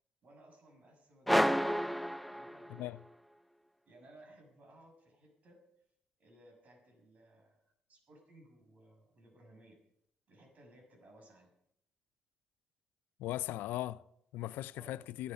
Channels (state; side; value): normal; both; correlation 0.87